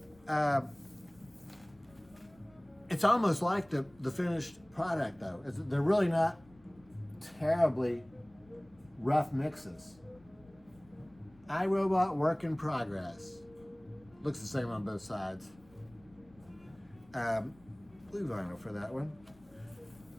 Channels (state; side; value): noise; left; rumble, 27 dB below the sound